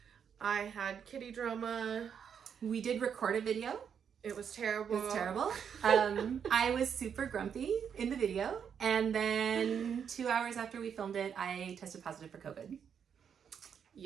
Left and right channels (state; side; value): quieter; left; 7.6 dB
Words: I had kitty drama. We did record a video. It was terrible. It was terrible. I was super grumpy in the video. And then 2 hours after we filmed it, I tested positive for COVID.